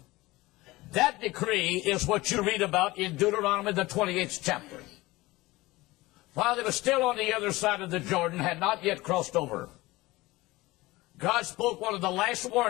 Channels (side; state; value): right; quieter; 20.1 dB